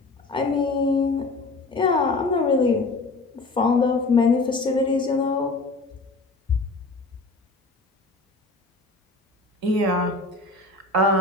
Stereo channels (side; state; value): right; quieter; 3.3 dB